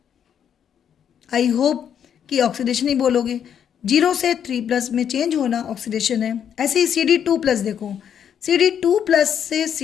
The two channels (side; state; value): right; quieter; 8.6 dB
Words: आई होप कि ऑक्सीडेशन ही बोलोगे। 0 से 3+ में चेंज होना ऑक्सीडेशन है। ऐसे ही Cd2+, देखो Cd2+ से